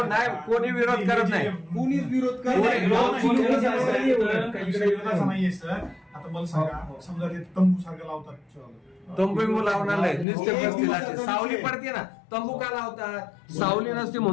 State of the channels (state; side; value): drops out; right; at 10.2 s